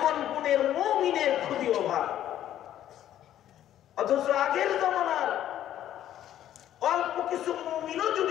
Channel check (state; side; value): quieter; right; 11.7 dB